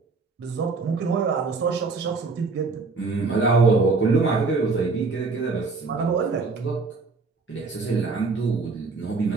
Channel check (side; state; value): left; quieter; 4.2 dB